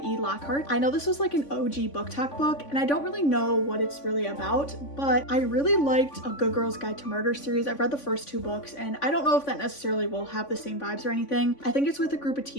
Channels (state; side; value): late; right; 3.5 ms